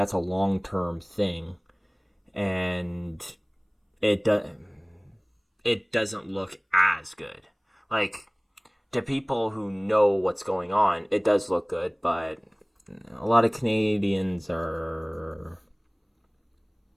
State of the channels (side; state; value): both; identical; correlation 1.00